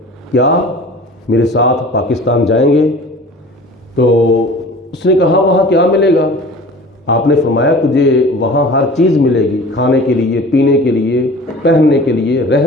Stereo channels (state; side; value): normal; both; correlation 0.42